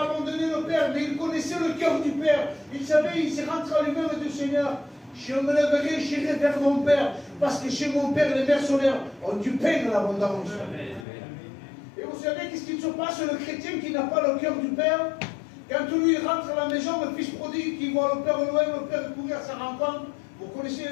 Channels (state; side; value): drops out; right; at 11.1 s